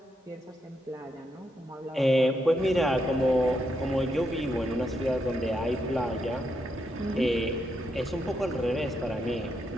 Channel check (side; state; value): both; normal; correlation 0.80